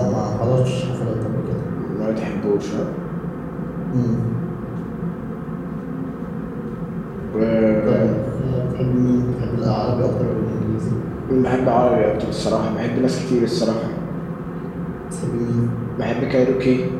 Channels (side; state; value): both; identical; correlation 1.00